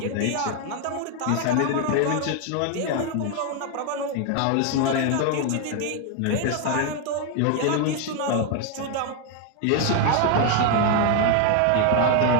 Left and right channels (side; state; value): both; different; correlation 0.01